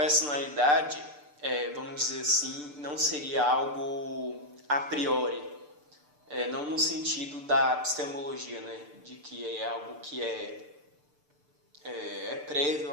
vamos dizer assim, não seria algo a priori, não no sentido da epistemologia, né, de que é algo que é prévio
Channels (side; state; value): left; late; 6.8 ms